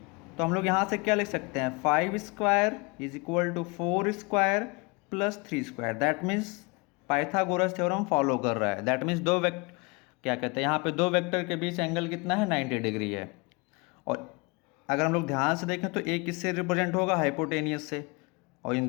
तो हम लोग यहाँ से क्या लिख सकते हैं, 5 square is equal to 4 square plus 3 square. That means Pythagoras theorem follow कर रहा है। दैट मीन्स दो वेक्टर क्या कहते हैं, यहाँ पे दो वेक्टर के बीच एंगल कितना है 90 डिग्री है। और अगर हम लोग ध्यान से देखें तो एक किससे रिप्रेजेंट होगा, हाइपोटेनियस से, और इन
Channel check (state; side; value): quieter; right; 28.8 dB